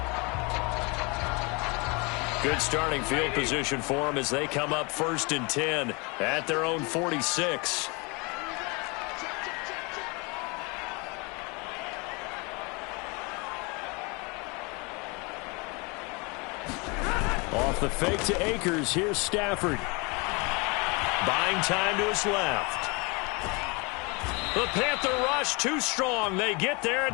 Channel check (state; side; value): quieter; right; 29.2 dB